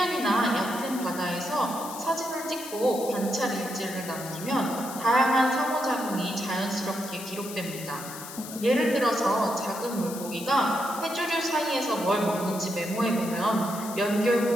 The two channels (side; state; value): left; noise; hiss, 12 dB below the sound